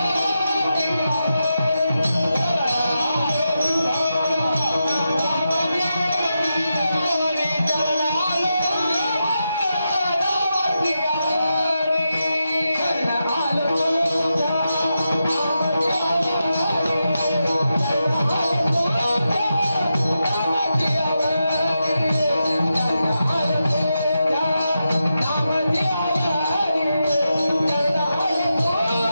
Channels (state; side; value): inverted; both; correlation -0.88